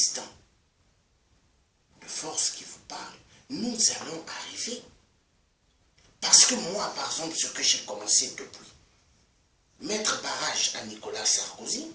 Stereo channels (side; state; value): both; identical; correlation 1.00